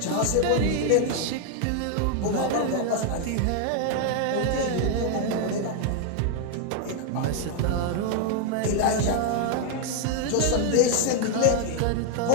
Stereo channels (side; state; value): both; different; correlation 0.00